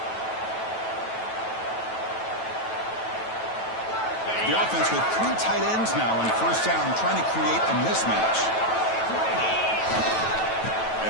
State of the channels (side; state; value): right; late; 9.1 ms